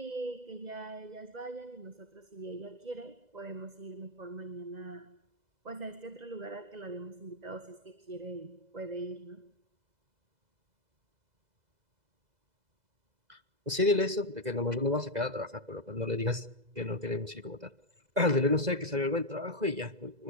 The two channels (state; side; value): late; left; 2.0 ms